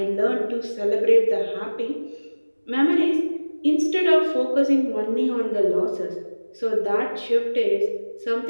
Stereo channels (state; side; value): inverted; both; correlation -1.00